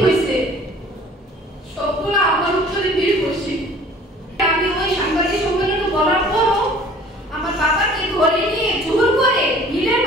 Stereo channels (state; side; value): normal; both; correlation 0.50